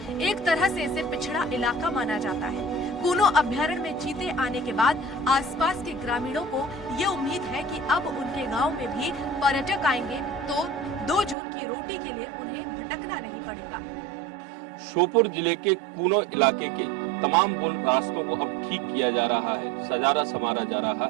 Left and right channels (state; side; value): drops out; left; at 11.4 s